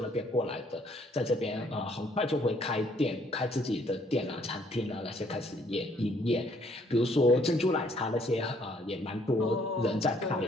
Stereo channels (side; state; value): both; normal; correlation 0.65